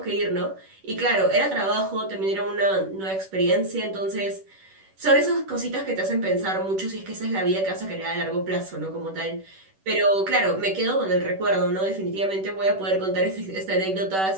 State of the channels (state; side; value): late; left; 10 ms